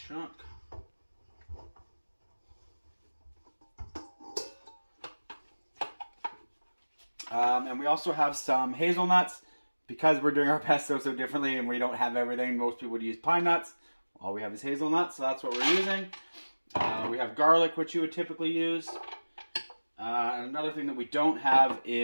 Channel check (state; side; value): inverted; both; correlation -1.00